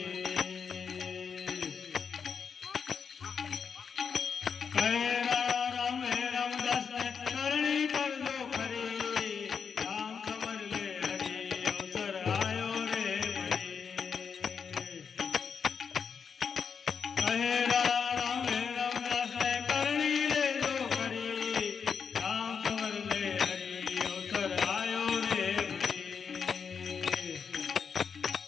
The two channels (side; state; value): right; quieter; 6.3 dB